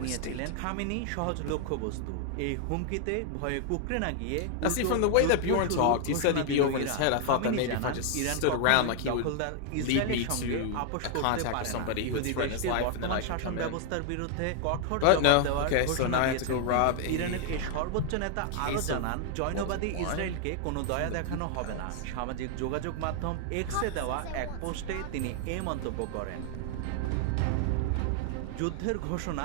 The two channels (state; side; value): different; both; correlation 0.00